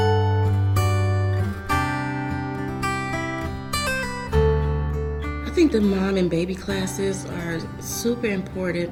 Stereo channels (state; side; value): identical; both; correlation 1.00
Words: I think the mom and baby classes are super